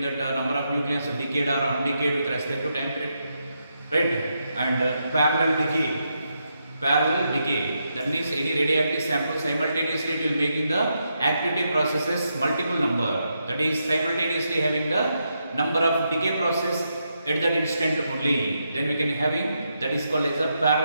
that number of nucleons decayed or undecayed with respect to time period, right? And parallel decay. Parallel decay, that means any radioactive sample simultaneously it will making the activity processes multiple number, that is simultaneously having the number of decay process at that instant only, then we can having that is called as a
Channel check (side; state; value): both; inverted; correlation -0.82